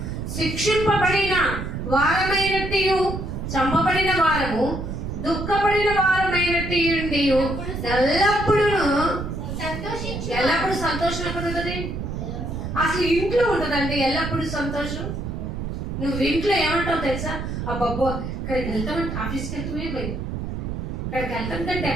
శిక్షింపబడిన వారమైనట్టు చంపబడిన వారము, దుఃఖపడిన వారమైనట్టు ఎల్లప్పుడూ సంతోషం ఎక్కడ ఉంటుంది? అసలు ఇంట్లో ఉంటుందండి ఎల్లప్పుడూ సంతోషం. నువ్వు ఇంట్లో ఏమంటావు తెలుసా? అబ్బబ్బో ఇక్కడికి వెళ్తామంటే ఆఫీస్కి వెళ్తామే భయం, ఇక్కడికి వెళ్తాం కంటే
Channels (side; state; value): right; noise; rumble, 5 dB below the sound